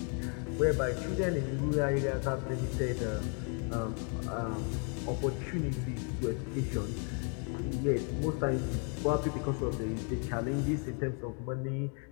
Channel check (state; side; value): quieter; right; 39.6 dB